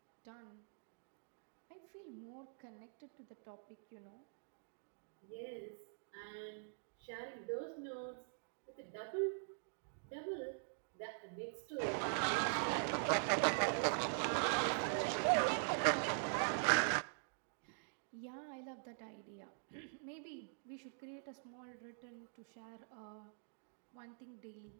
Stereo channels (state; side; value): silent; left; digital silence